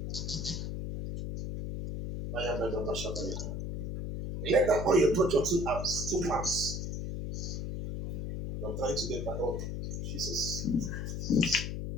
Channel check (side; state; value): left; noise; hum, 4 dB below the sound